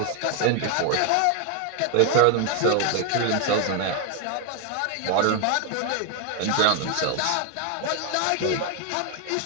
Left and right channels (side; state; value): both; different; correlation 0.01